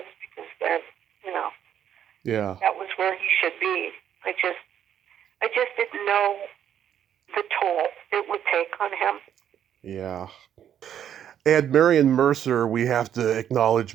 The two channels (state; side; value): quieter; left; 9.7 dB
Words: because then, that was where he should be. I just didn't know the toll it would take on him. Yeah. And Marion Mercer, we have to